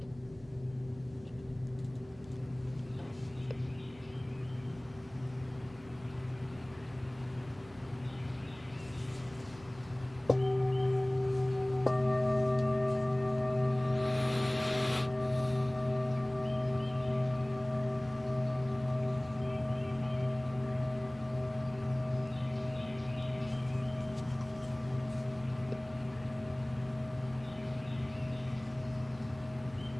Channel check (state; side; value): noise; right; hum, 22 dB below the sound